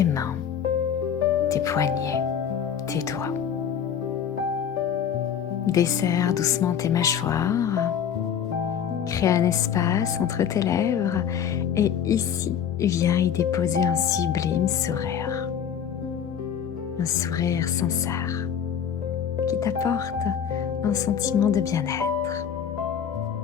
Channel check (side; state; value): right; quieter; 8.3 dB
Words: mains, tes poignets, tes doigts. Desserre doucement tes mâchoires, crée un espace entre tes lèvres et ici, viens y déposer un sublime sourire. Un sourire sincère qui t'apporte un sentiment de bien-être.